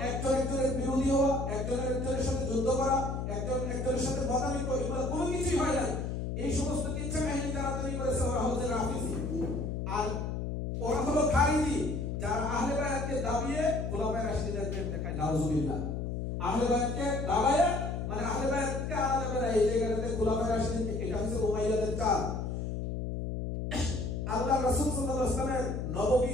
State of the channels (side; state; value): left; noise; hum, 3 dB below the sound